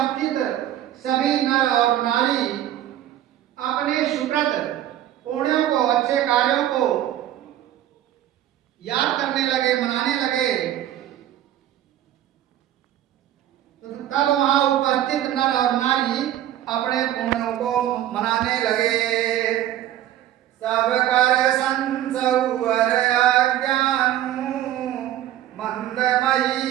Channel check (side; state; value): left; quieter; 12.5 dB